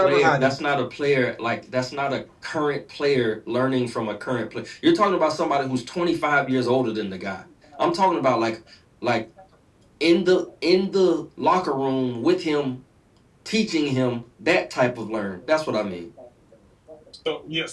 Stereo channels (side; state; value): both; identical; correlation 1.00